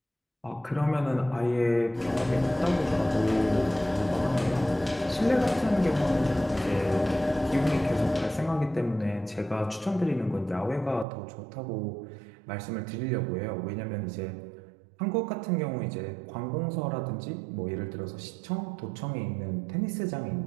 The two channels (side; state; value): left; drops out; at 11.1 s